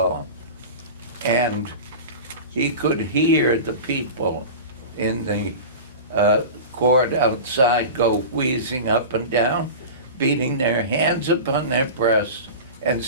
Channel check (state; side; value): inverted; both; correlation -0.31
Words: and he could hear the people in the court outside go wheezing up and down, beating their hands upon their breasts and